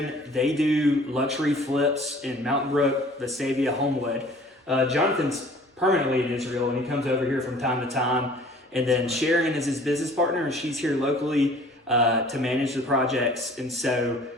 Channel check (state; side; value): normal; both; correlation 0.50